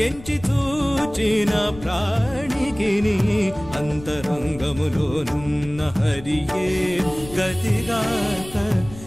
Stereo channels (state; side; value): noise; left; rumble, 16 dB below the sound